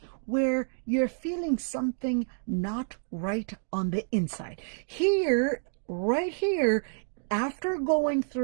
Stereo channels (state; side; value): silent; left; digital silence